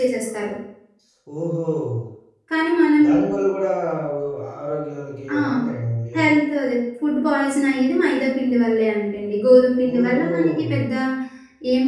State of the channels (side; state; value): both; identical; correlation 1.00